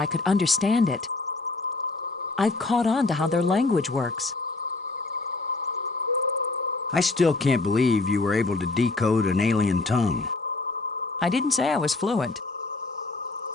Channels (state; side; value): quieter; right; 3.4 dB